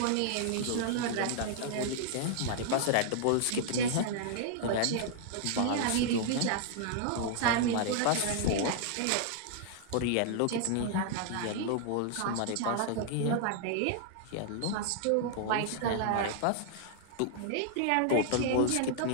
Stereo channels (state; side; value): different; both; correlation 0.00